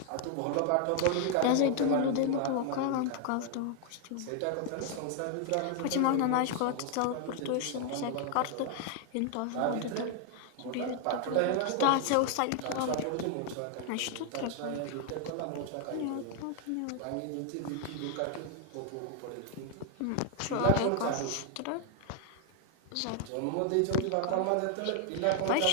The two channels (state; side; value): different; both; correlation 0.00